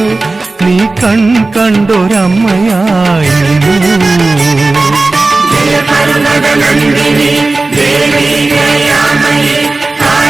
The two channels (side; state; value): left; quieter; 3.3 dB